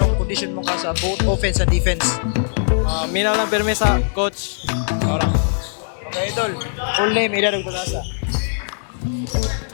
condition mo ka sa both offense and defense? Mina lang pirme sa coach. Ora. Okay idol, full name, edad ug kalasa.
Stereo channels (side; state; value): right; silent; 66 dB below the other